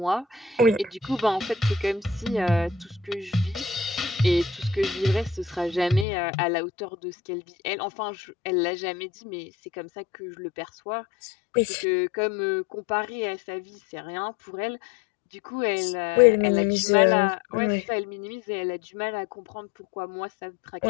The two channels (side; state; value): right; drops out; at 6.1 s